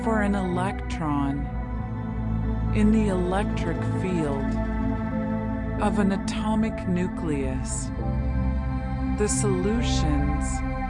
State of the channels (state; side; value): identical; both; correlation 1.00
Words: for an electron in the electric field of an atomic nucleus, the solutions